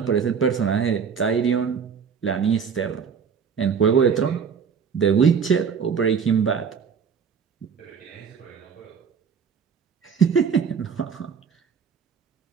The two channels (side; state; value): left; quieter; 6.6 dB